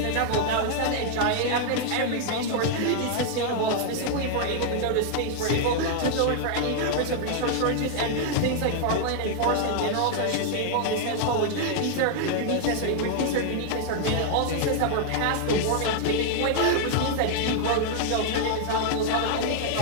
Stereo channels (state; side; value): different; both; correlation 0.00